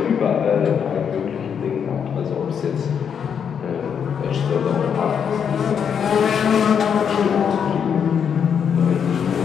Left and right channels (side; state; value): right; quieter; 7.5 dB